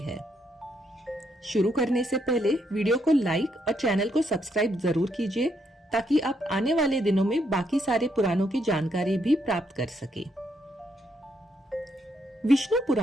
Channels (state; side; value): normal; both; correlation 0.76